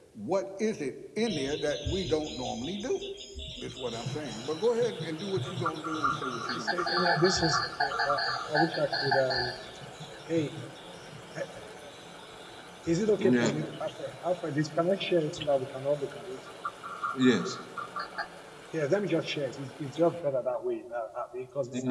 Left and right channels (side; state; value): both; identical; correlation 1.00